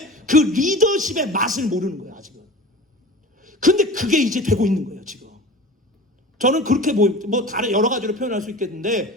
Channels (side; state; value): both; normal; correlation 0.37